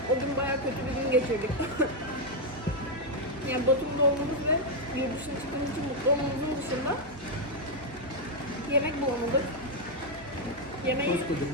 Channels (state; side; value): normal; both; correlation 0.00